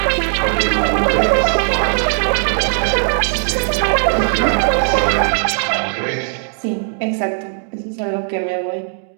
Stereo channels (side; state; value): left; silent; 59 dB below the other